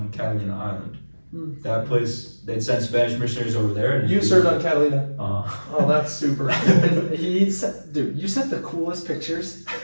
Catalina Island. That place, they'd send Spanish missionaries over there. And You served on Catalina. Oh, that's super. Dude, you sent the coolest pictures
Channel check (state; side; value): inverted; both; correlation -1.00